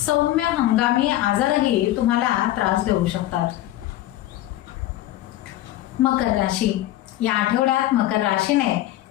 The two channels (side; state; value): right; quieter; 14.7 dB